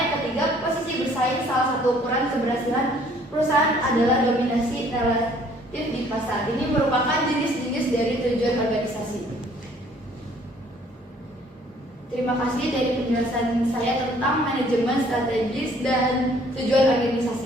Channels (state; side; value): normal; both; correlation 0.59